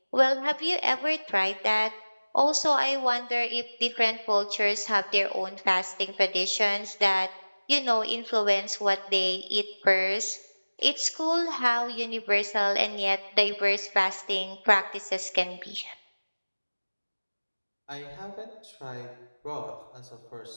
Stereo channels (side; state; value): both; inverted; correlation -1.00